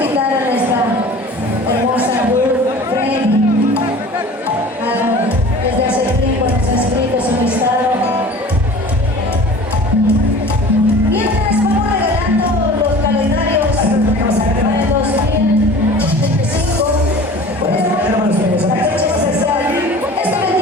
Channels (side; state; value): both; normal; correlation 0.42